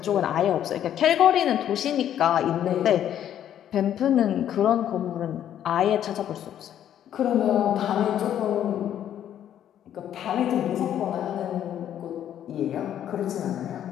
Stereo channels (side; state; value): right; quieter; 10.5 dB